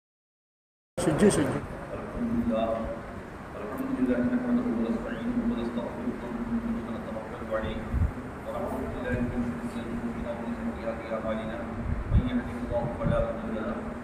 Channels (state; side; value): identical; both; correlation 1.00